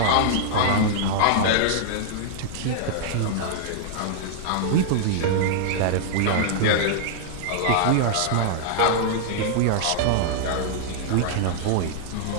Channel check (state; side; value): different; both; correlation -0.01